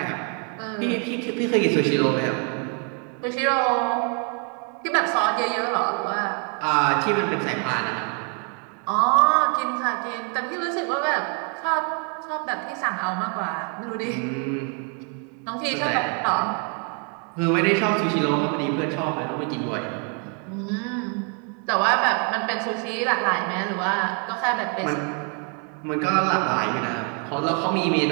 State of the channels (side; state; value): left; quieter; 38.9 dB